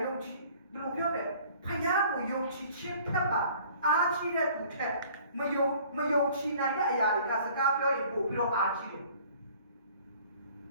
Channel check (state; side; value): inverted; both; correlation -0.52